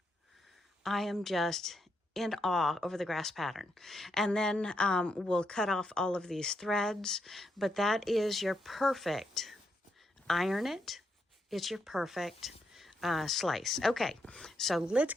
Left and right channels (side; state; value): both; normal; correlation 0.80